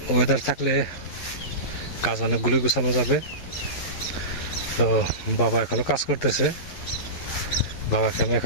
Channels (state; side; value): late; right; 11 ms